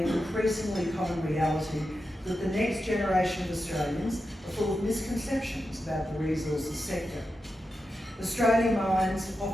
increasingly common reality that the next generation of Australians are full of misconceptions about the resources sector. Australian mines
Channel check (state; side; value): normal; both; correlation 0.89